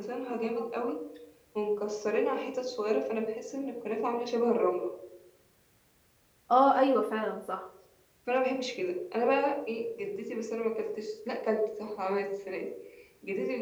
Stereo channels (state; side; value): identical; both; correlation 1.00